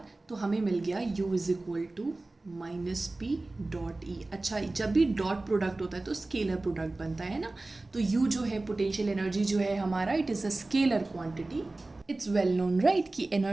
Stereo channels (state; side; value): quieter; left; 3.0 dB